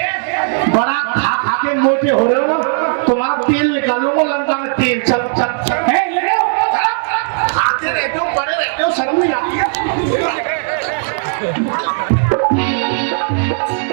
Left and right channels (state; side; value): silent; left; digital silence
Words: बड़ा खा खा के मोटे हो रहे हो ना, तुम्हारा तेल निकालूंगा लंका में तेल। चल चल ले लो, खाते रहते हो, बड़े रहते हो, शर्म नहीं आती है।